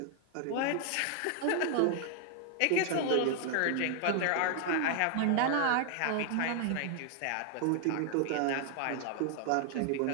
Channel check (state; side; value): different; both; correlation 0.00